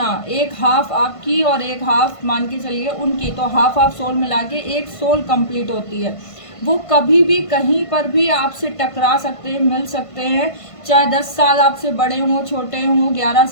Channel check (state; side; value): late; right; 1.5 ms